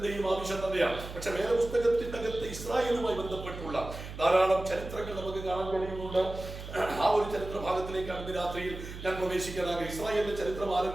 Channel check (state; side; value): noise; right; hum, 10 dB below the sound